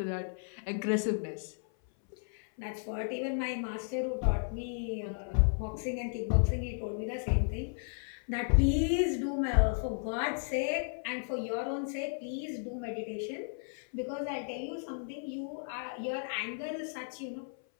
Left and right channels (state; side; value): silent; right; 55 dB below the other